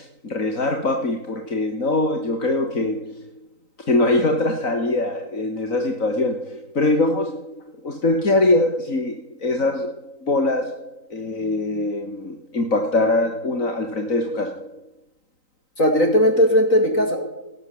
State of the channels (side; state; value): right; late; 3.9 ms